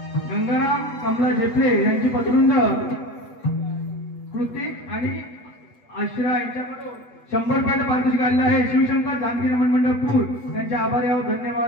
गंगाराम कमला झेपले यांची पत्रुंड कृतिक आणि आश्रा यांच्याकडून 100 रुपयाचं पारितोषिक आलेलं आहे. शिवशंकर जानकी रमण मंडळ पूर त्यांचे आभारी आहोत.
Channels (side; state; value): right; late; 8.3 ms